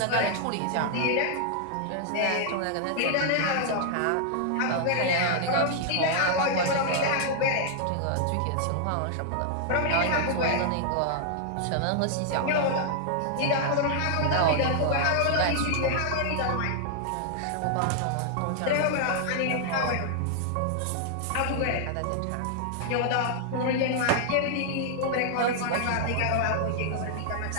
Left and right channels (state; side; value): different; both; correlation -0.01